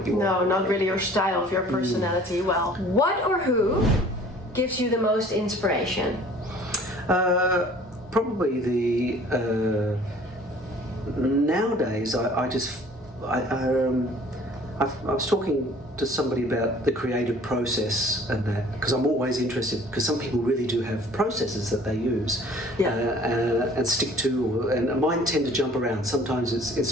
you want. No, not really your style of your personality. Well, what or who gives you the most inspiration? Probably the nowadays. I was talking to somebody about the creative process and that, because I'm always interested, because some people really do have processes that they use and stick to, and mine tend to jump around. Sometimes it's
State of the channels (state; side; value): normal; both; correlation 0.51